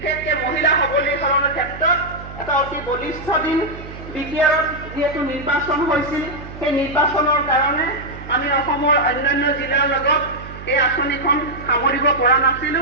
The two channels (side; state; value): right; noise; hum, 13 dB below the sound